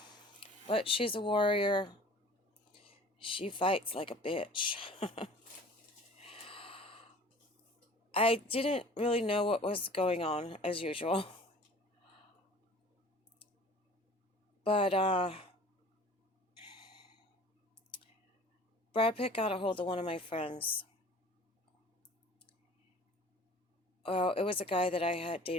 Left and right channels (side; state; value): both; normal; correlation 0.46